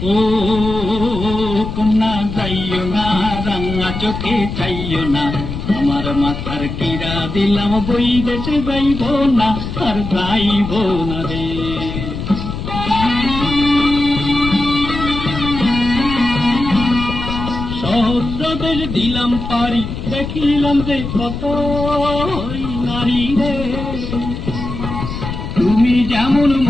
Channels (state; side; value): noise; left; rumble, 6 dB below the sound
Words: ও কন্যা যাইও না, রাঙা চোখে চাইও না, আমার মাথার কিরা দিলাম বই দেশে যাইব না, আর যাইব না রে। সহস্র দেশ দিলাম পারি, দেখিলাম যে কত নারী রে, তুমি যেমন